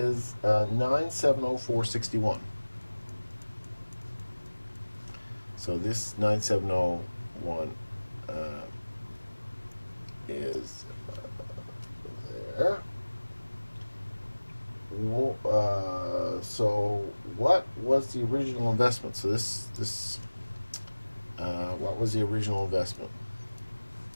9,704.61. So this 9701 is there. So what was the original investment? So what was the original investment?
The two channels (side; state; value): both; inverted; correlation -1.00